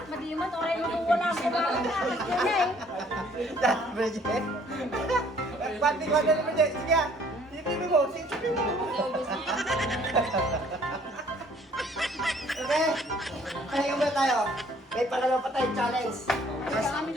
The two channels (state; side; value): normal; both; correlation 0.59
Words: Madimat, oray mo kung wala ko ba? Yun eh. Bridget. Pati ko na naman dyan. Sige, sipipin mo. Sipipin mo. Okay? Pahinga muna tayo. May pangalawa pa tayong challenge. Kaya kami